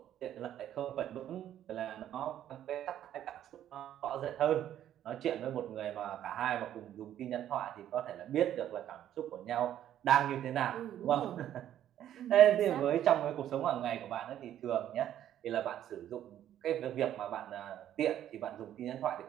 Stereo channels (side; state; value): left; quieter; 11.3 dB